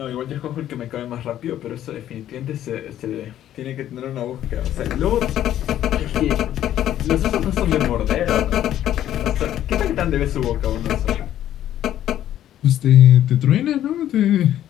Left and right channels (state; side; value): quieter; right; 11.8 dB